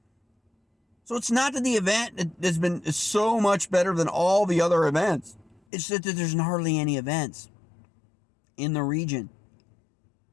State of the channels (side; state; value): right; drops out; at 5.6 s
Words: So it's not that the event has been so much better than all the other events. It's that there's hardly any events in the region,